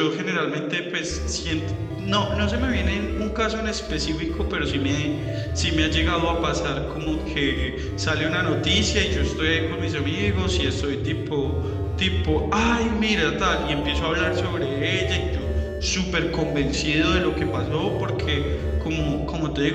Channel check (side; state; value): both; identical; correlation 1.00